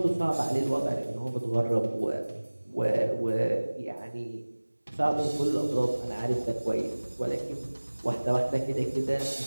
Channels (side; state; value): both; inverted; correlation -1.00